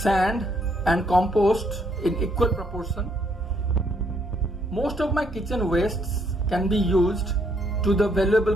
and compost in equal proportion. Most of my kitchen wastes can be used to the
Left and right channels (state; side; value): normal; both; correlation 0.71